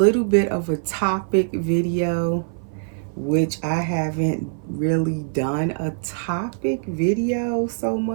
bit of a topic video, which I haven't really done a topic video so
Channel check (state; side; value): silent; left; 56 dB below the other